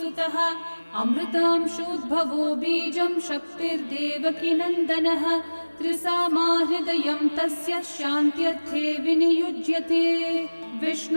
अमृतांशोद्भवो बीजं शक्तिर्देवकीनन्दनः त्रिसामाहृदयं तस्य शान्त्यर्थे विनियुज्यते।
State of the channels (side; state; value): both; inverted; correlation -1.00